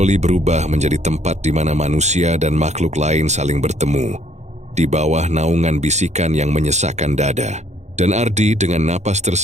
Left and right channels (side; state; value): left; late; 0.33 ms